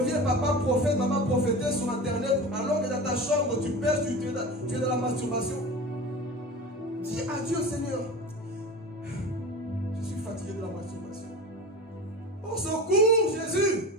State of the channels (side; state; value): both; normal; correlation 0.31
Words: papa prophète, maman prophétesse sur internet, alors que dans ta chambre, tu pêches, tu es dans la masturbation. Dis à Dieu, Seigneur, je suis fatigué de la masturbation. Au secours, Jésus!